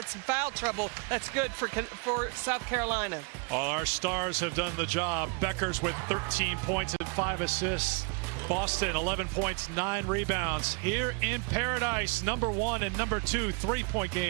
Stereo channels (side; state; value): left; quieter; 34.1 dB